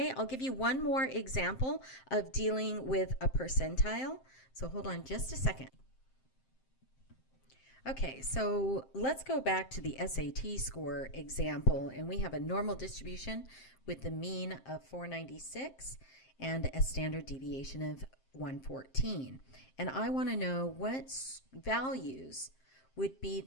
I'll give you one more example of dealing with a percentile. So hold on just a second. Okay, so let's go back to the SAT score example, and we have a normal distribution with the mean of 496 and a standard deviation of 114. And I want to know what values would be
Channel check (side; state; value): right; late; 7.6 ms